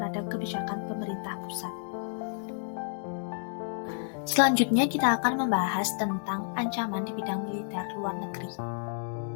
kebijakan pemerintah pusat. Selanjutnya kita akan membahas tentang ancaman di bidang militer luar negeri.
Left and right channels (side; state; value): right; silent; digital silence